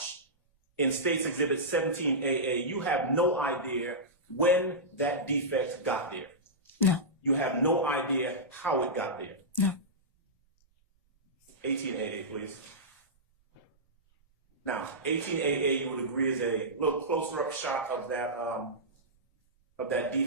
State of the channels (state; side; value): normal; both; correlation -0.14